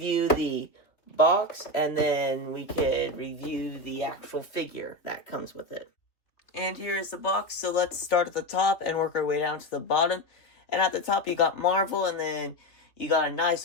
the box, and then we could review the actual figure that comes with it. And here is the box. So let's start at the top and work our way down to the bottom. And at the top, you got Marvel, and then you got a nice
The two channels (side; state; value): right; late; 3.2 ms